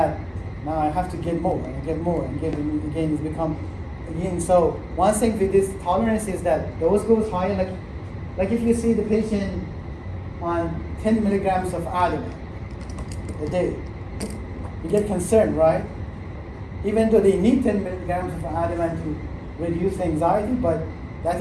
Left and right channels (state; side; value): identical; both; correlation 1.00